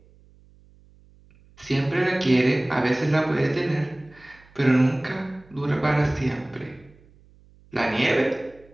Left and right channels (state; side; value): noise; right; hum, 28 dB below the sound